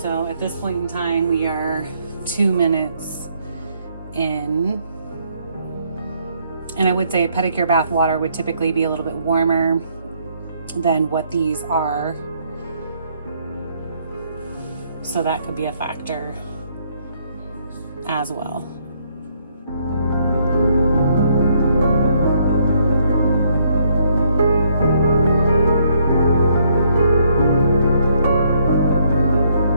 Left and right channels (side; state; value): both; inverted; correlation -0.70